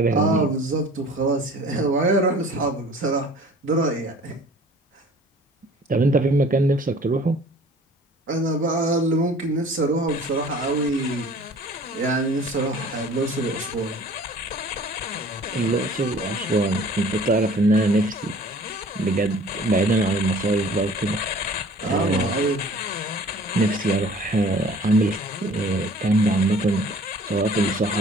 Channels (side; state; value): both; normal; correlation 0.49